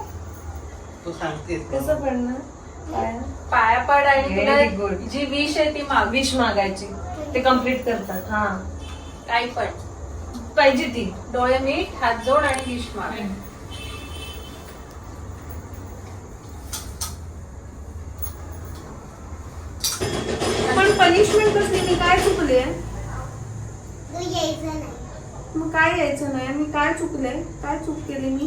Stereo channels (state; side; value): identical; both; correlation 1.00